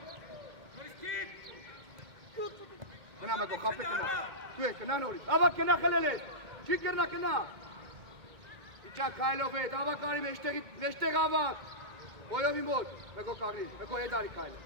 Kena Megol, kapı kena. Tüy, kena Nori. Ava kena kalele. Çikirna kena. İçak Kailo ve dava kari meşte gavak. Boyovim boy. Megol kagri. Megol edari Kailo.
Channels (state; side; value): late; left; 2.1 ms